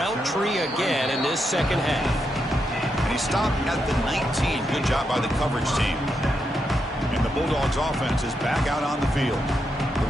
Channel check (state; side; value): normal; both; correlation 0.83